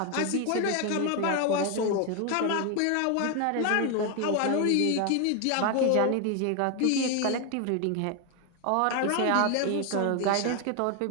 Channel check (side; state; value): both; different; correlation 0.01